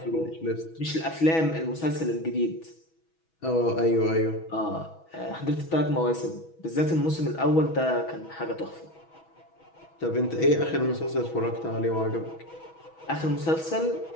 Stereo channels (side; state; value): right; late; 6.2 ms